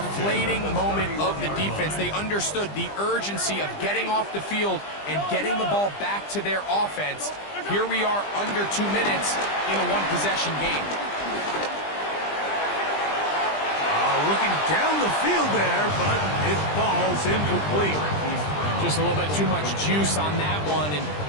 moment of the defense. They understood the urgency of getting off the field and getting the ball back to their offense. Here we are under 2 minutes in a one-possession game. Looking down the field there, but it falls incomplete. Just a little bit too much juice on that one, and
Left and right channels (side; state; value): right; late; 20 ms